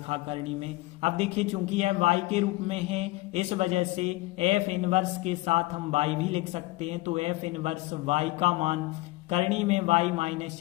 करनी में। अब देखिए चूंकि यह y के रूप में है, इस वजह से f इनवर्स के साथ हम y भी लिख सकते हैं, तो f इनवर्स y का मान करनी में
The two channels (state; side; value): quieter; right; 20.3 dB